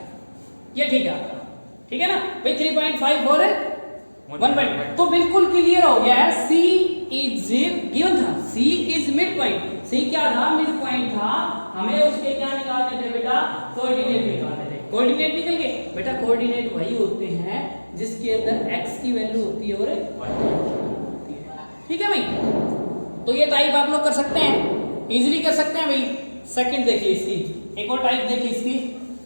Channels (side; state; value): both; inverted; correlation -1.00